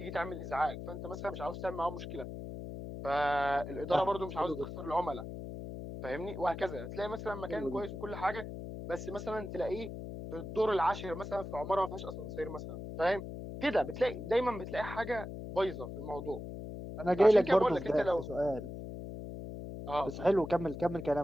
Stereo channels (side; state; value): left; noise; hum, 8 dB below the sound